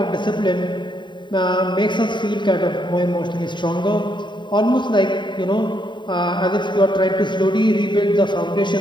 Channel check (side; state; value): right; late; 0.23 ms